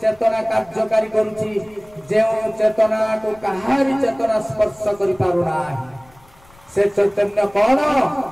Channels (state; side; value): noise; left; rumble, 28 dB below the sound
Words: चेतना कार्यकारी करूची जे चेतना को कहारी चेतना स्पर्श करि पारुना से चैतन्य कौन